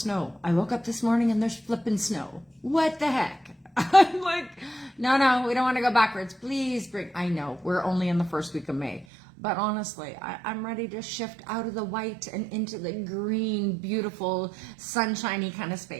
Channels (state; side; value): drops out; left; at 9.1 s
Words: I woke up this morning and there's flipping snow. What the heck? I'm like, no, we don't want to go backwards. Please bring, I know, we're only in the first week of May. But honestly, I'm ready to shift out of the white and into the green, beautiful, sunshiny kind of